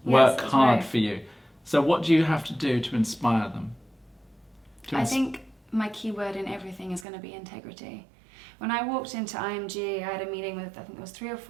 work that's hard right. for you. So what do you have to do to inspire them? I think my key word in everything is going to be integrity. When I walked into IMG, I had a meeting with, I think there was 3 or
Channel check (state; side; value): drops out; left; at 7.1 s